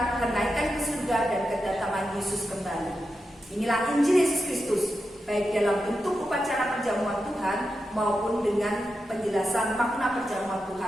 kenaikan ke surga, dan kedatangan Yesus kembali. Inilah Injil Yesus Kristus, baik dalam bentuk upacara perjamuan Tuhan maupun dengan penjelasan makna perjamuan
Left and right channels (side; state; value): both; normal; correlation 0.88